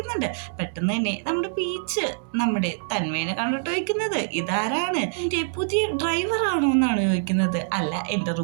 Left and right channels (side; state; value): left; silent; digital silence